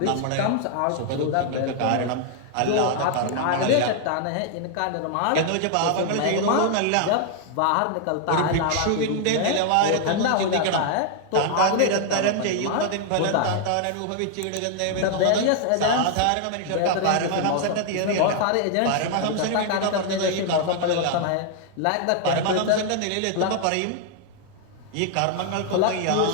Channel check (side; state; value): both; different; correlation 0.00